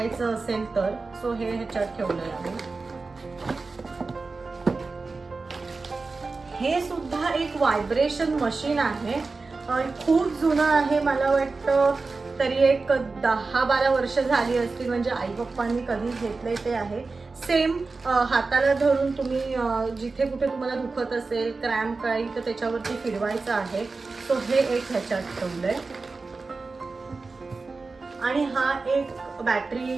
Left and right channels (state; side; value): quieter; left; 3.9 dB